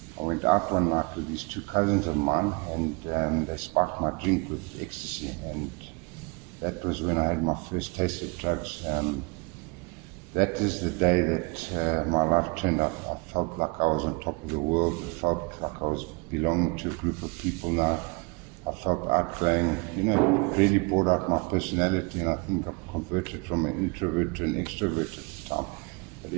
I went out one night with these two cousins of mine, and they spiked my drink with ecstasy. And that was when I had my first taste of drugs. That is the day that my life turned up. I felt like I was on top of the world. I felt like I was belonging to a group of people now. I felt outgoing. It really brought out my personality, and I think I converted from an introvert to an extrovert at the time. But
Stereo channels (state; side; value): quieter; left; 29.9 dB